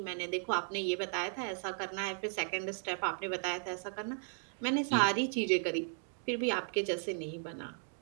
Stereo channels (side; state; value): left; silent; 54 dB below the other